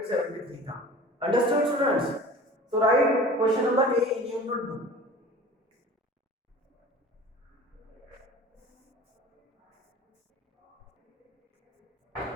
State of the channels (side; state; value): both; normal; correlation 0.41